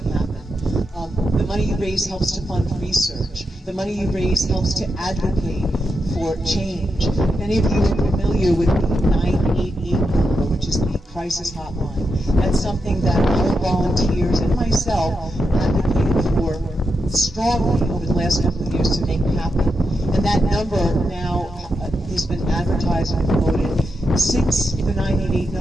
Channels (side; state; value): both; normal; correlation 0.86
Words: happen. The money you raise helps to fund research. The money you raise helps to advocate for change. If any of you are familiar with the 988 number, which is the crisis hotline, that's something that our volunteers and myself advocated for strongly over the last couple of years to make happen. And that number now has been advertised and promoted. Since the 988